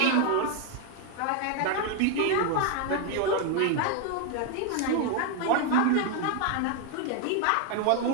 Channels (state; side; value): different; both; correlation 0.01